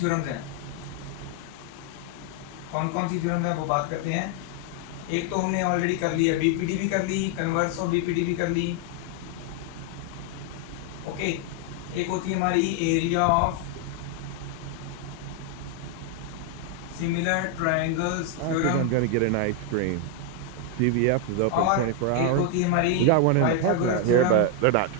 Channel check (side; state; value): both; different; correlation 0.01